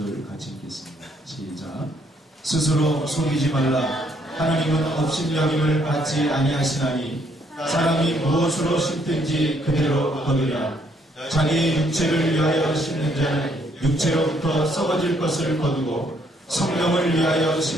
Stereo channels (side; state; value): both; normal; correlation 0.69